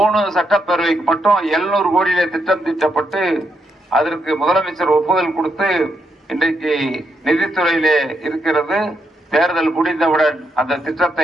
சட்டப்பேரவைக்கு மட்டும் 700 கோடியிலே திட்டம் தீட்டப்பட்டு அதற்கு முதலமைச்சர் ஒப்புதல் கொடுத்து இன்றைக்கு நிதித்துறையிலே இருக்கிறது. தேர்தல் முடிந்தவுடன் அந்த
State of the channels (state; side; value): normal; both; correlation 0.80